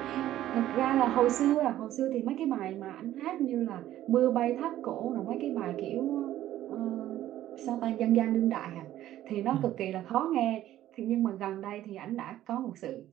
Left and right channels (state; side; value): quieter; left; 13.3 dB